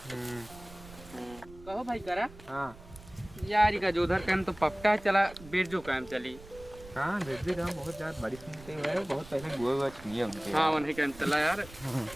कहो भाई करा। हाँ यार का जो उधर काम तो पक्का चला बिरजू काम चली। हाँ बिरजू काम बहुत ज्यादा बड़ी सुनते हैं बहुत पहले गुआ छुए उनके। हाँ वही काम चला यार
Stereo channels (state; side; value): noise; right; rumble, 19 dB below the sound